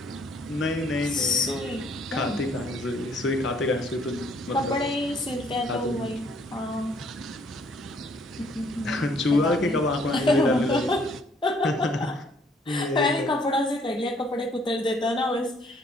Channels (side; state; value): both; normal; correlation 0.64